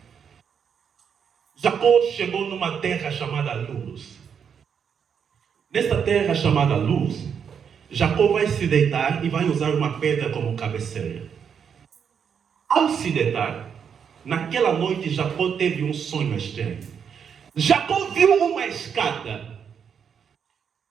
Jacó chegou numa terra chamada Luz. Nessa terra chamada Luz, Jacó vai se deitar e vai usar uma pedra como cabeceira. Ao se deitar, naquela noite Jacó teve um sonho estranho. Jacó viu uma escada,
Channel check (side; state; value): left; quieter; 7.3 dB